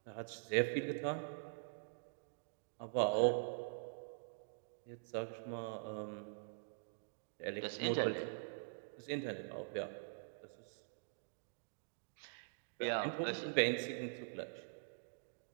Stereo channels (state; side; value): silent; left; digital silence